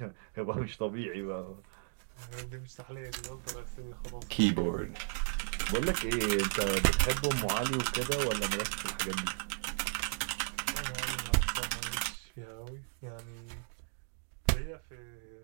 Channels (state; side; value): silent; left; digital silence